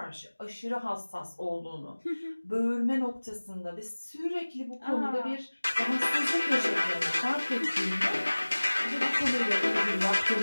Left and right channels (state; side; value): inverted; both; correlation -1.00